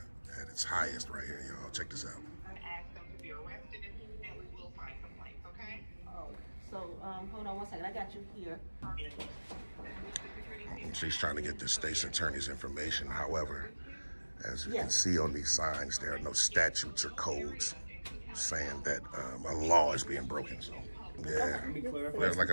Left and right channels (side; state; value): both; inverted; correlation -1.00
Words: at its highest right here, y'all. Check this out. Ask them to be arrested, and we will file complaints, okay? Oh, so hold on one second. I got you here. She's trying to get the state's attorney's information. However, as you can see on these signs, there are no statutes or codes saying that a law is being broken. So, yeah, like